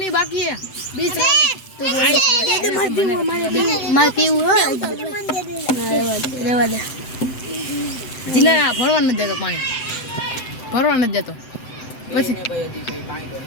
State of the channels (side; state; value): right; late; 7.8 ms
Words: ही बाकी है 20 रन तो मार पीऊ रेवा दे जिला भरवा न देतो पानी भरवा न देतो પછી